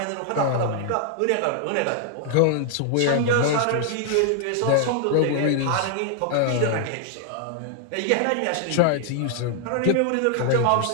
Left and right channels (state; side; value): different; both; correlation 0.00